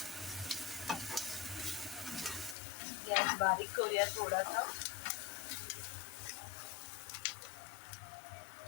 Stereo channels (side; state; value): right; drops out; at 2.6 s